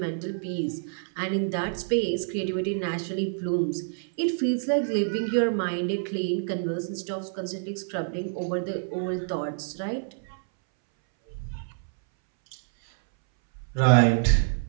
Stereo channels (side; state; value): left; silent; 60 dB below the other